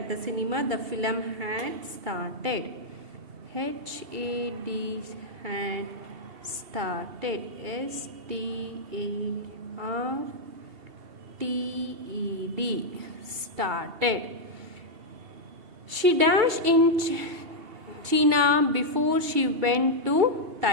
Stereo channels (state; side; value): late; left; 2.7 ms